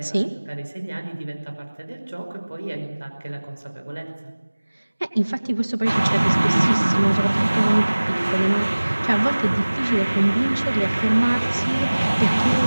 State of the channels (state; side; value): inverted; both; correlation -1.00